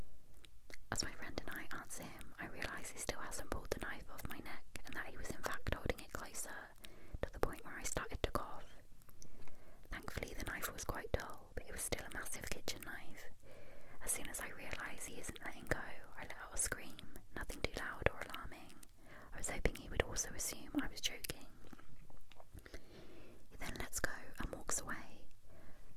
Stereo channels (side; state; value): both; identical; correlation 1.00